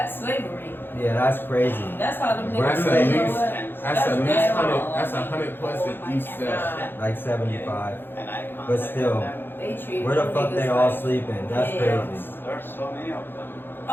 slavery. Yeah, that's crazy. That's how them That's niggas at say, you know least what? that's at least bad. 100. That's 100 plus at each step. Like 75. And I But contacted still, them. They treat where the them fuck niggas they all like- sleeping? That's Yeah. crazy. There are so many of them.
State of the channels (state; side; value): late; right; 0.10 ms